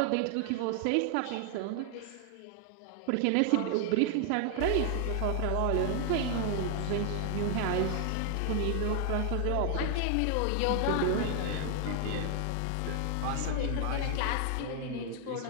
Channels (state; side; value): different; both; correlation 0.00